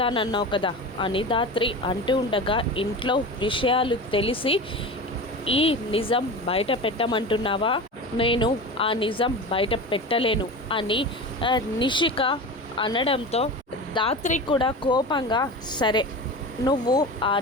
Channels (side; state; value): both; normal; correlation 0.29